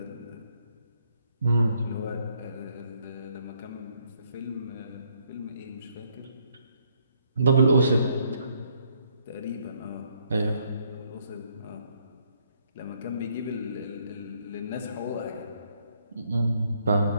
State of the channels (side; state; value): both; inverted; correlation -0.70